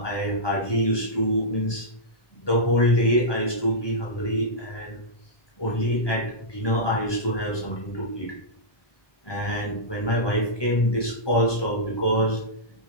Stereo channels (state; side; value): late; right; 1.2 ms